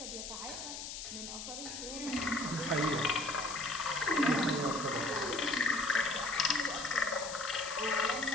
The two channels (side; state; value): left; noise; hiss, 8 dB below the sound